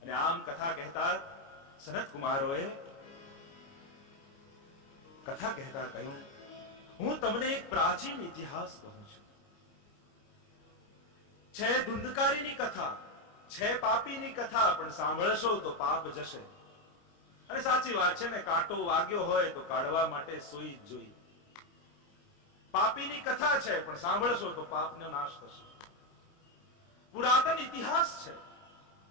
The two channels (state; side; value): late; right; 29 ms